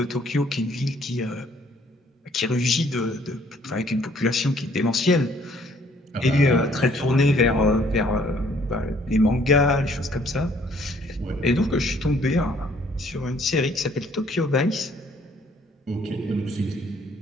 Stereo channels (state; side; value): normal; both; correlation 0.62